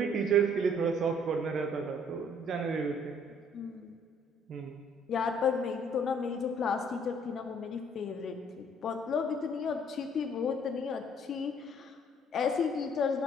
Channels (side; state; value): both; normal; correlation 0.61